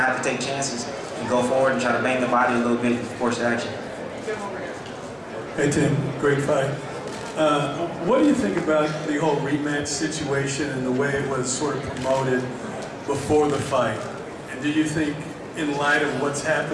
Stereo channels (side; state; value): both; identical; correlation 1.00